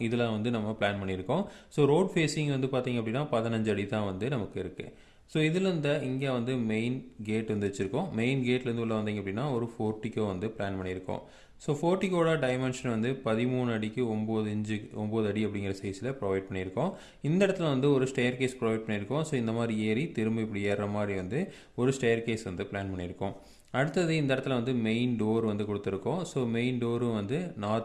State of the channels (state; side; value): identical; both; correlation 1.00